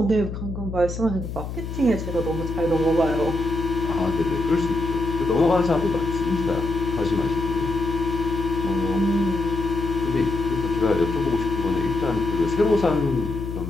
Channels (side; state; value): left; noise; hum, 7 dB below the sound